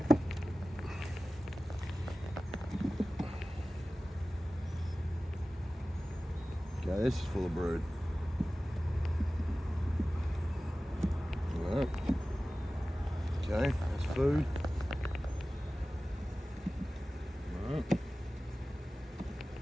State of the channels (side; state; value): both; normal; correlation 0.97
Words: Okay, this is full of brood. Alright. Okay, that's food. Alright.